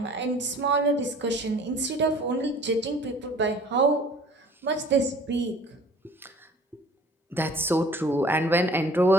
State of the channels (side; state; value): both; normal; correlation 0.50